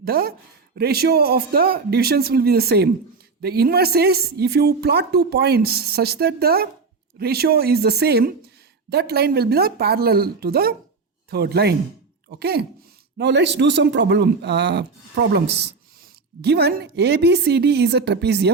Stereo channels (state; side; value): quieter; left; 4.5 dB